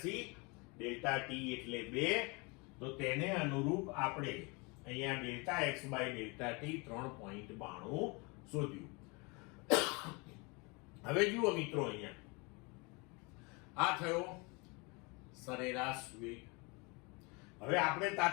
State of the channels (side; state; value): right; quieter; 28.9 dB